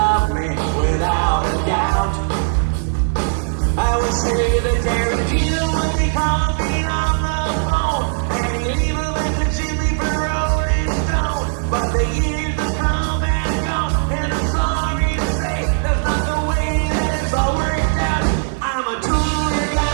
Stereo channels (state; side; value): silent; left; digital silence